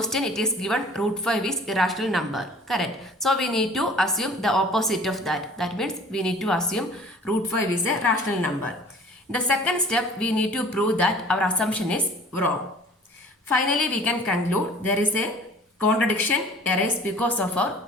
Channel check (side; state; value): both; normal; correlation 0.48